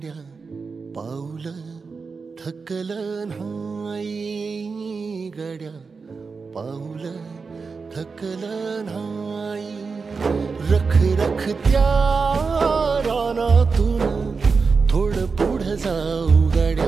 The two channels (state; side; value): quieter; left; 4.8 dB